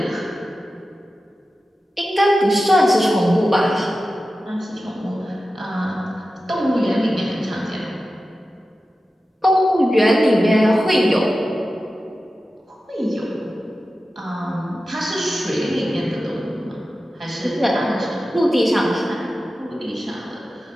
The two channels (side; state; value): both; normal; correlation 0.93